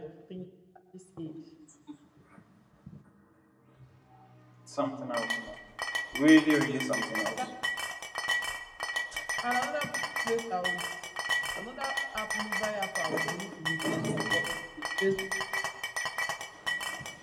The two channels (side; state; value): both; identical; correlation 1.00